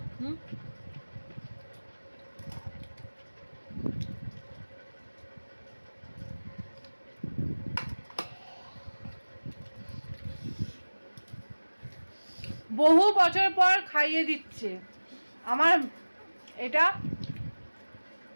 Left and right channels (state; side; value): inverted; both; correlation -1.00